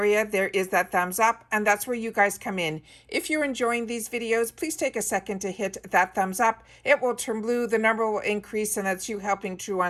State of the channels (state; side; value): identical; both; correlation 1.00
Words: there is that thumbs up, and that's where you guys come in. If you're enjoying these videos, please take a second to hit that thumbs up. It will turn blue, the number will increase, and that's you helping True